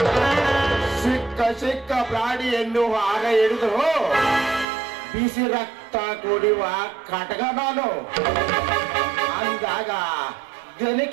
ಸಿಕ್ಕ ಪ್ರಾಣಿಯನ್ನು ಆಗ ಹಿಡಿದು ಬಿಸಿ ರಕ್ತ ಕುಡಿಯುವ ಕಟಕ ನಾನು ಅಂದಾಗ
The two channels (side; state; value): left; drops out; at 4.7 s